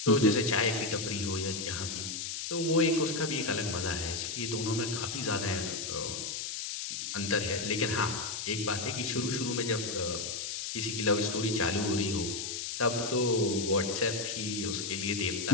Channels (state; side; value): noise; left; hiss, 4 dB below the sound